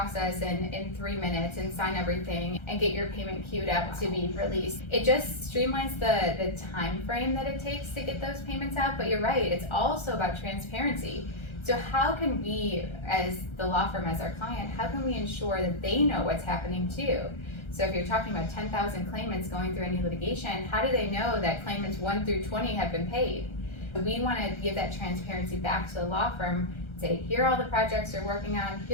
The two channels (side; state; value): right; late; 1.3 ms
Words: in 3 minutes and sign everything and get your payment queued up to be released. It just streamlines the time frame that it takes to get those payments out, but you're right, it's also about transparency. So how can we, as the law firm, as our client, how can we ensure that they know what's happening too? So if you're talking about 10,000 claimants going through any litigation, how do they know that claimants 1 through 20 have been paid? We want to give that transparency back to the law firm, say, here are all the projects they're working on,